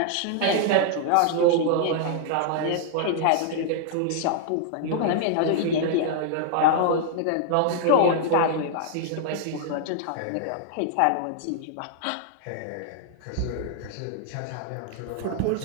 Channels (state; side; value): different; both; correlation -0.01